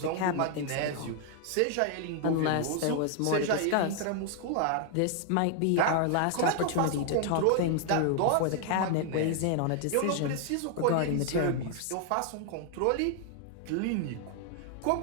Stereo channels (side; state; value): both; different; correlation 0.00